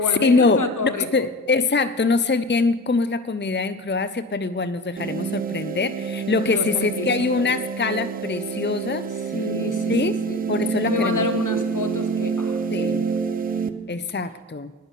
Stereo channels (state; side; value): normal; both; correlation 0.33